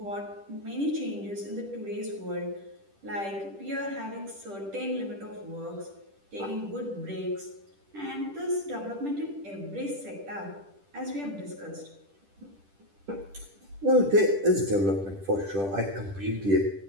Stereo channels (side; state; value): left; late; 10 ms